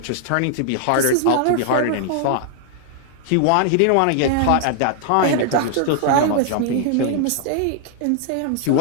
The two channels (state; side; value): different; both; correlation 0.00